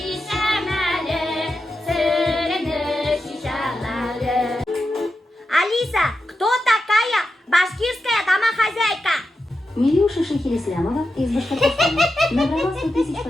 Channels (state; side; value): normal; both; correlation 0.89